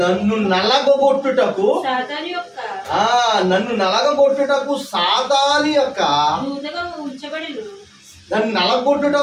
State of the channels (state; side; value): identical; both; correlation 1.00